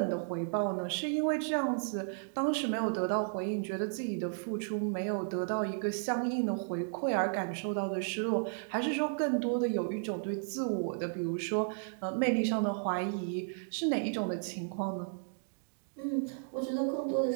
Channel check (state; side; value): silent; left; digital silence